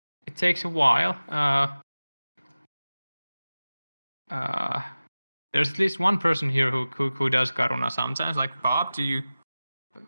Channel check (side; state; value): both; inverted; correlation -0.97